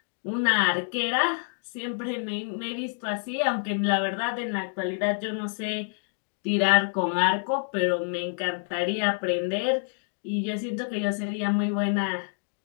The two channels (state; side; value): silent; right; digital silence